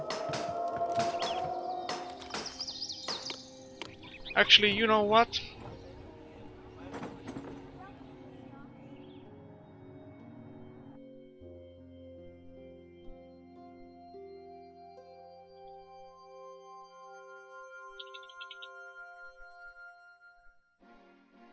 Actually, you know what?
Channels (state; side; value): identical; both; correlation 1.00